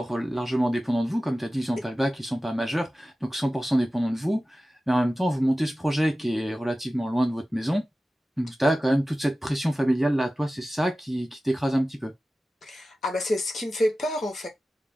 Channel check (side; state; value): both; normal; correlation 0.95